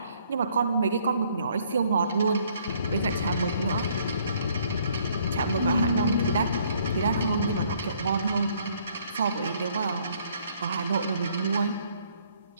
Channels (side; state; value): both; inverted; correlation -0.64